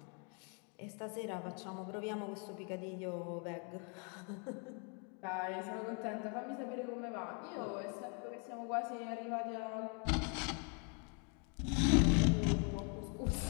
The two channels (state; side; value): quieter; right; 37.9 dB